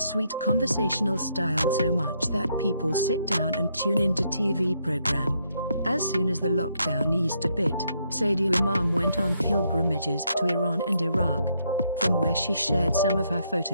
sweet conversational style so much that people sit down and tune into TV program. As soon as the lockdown eased a bit, Sadia Imam went on pilgrimages to Iran and Iraq, from where she shared some of her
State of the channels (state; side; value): inverted; both; correlation -0.75